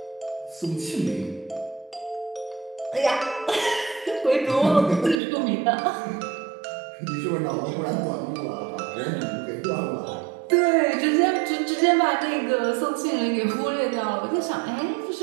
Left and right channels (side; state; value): left; drops out; at 5.2 s